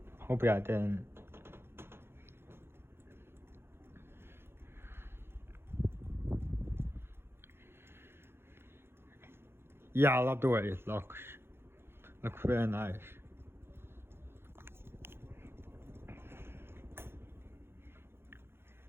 Hopefully I didn't. Yeah, I love the way it looks. Looks very nice.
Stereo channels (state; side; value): late; left; 0.11 ms